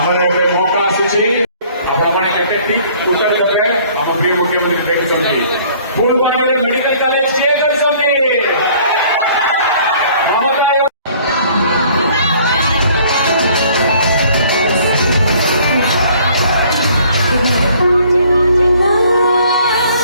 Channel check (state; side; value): inverted; both; correlation -0.57